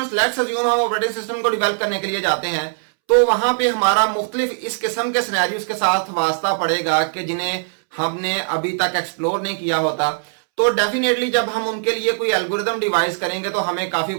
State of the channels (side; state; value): left; silent; 66 dB below the other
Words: लेट्स अज्यूम हम ऑपरेटिंग सिस्टम को डेवलप करने के लिए जाते हैं तो वहां पे हमारा मुख्तलिफ इस किस्म के सिनेरियोज के साथ वास्ता पड़ेगा कि जिन्हें हमने अभी तक एक्सप्लोर नहीं किया होता। तो डेफिनेटली जब हम उनके लिए कोई एल्गोरिथम डिवाइस करेंगे तो हमें काफी